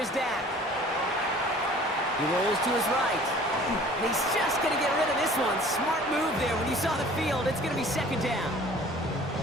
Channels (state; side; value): normal; both; correlation 0.49